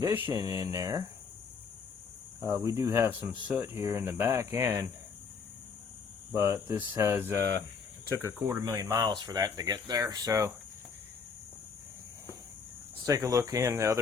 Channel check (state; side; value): quieter; right; 5.6 dB